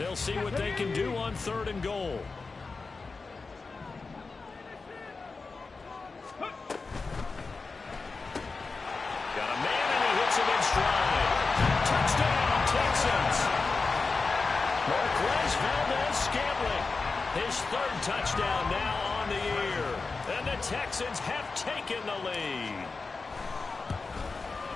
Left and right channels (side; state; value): right; quieter; 4.1 dB